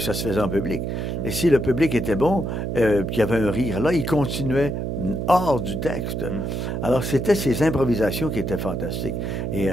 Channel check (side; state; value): right; noise; hum, 2 dB below the sound